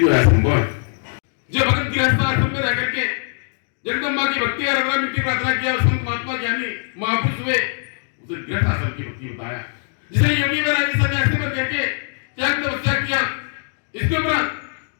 ऐसा संभव है। जो भगत गृहस्थ आश्रम में रह करके जगदम्बा की भक्ति और अगला मिट्टी प्रार्थना किया, संत महात्मा ज्ञानी महापुरुष हुए, उसे गृहस्थ आश्रम की भक्ति बताया। जिसने योगी वैरागी सन्यासी बन करके त्याग तपस्या किया, इसके उपरांत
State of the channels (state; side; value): silent; right; digital silence